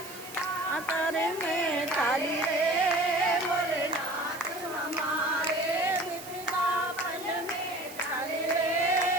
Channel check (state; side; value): noise; right; hiss, 15 dB below the sound